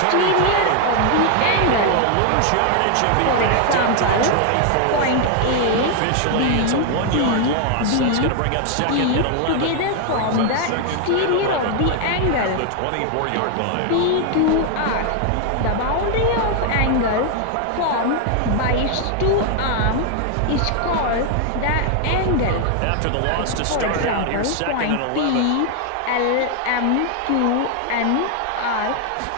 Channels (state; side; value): different; both; correlation 0.00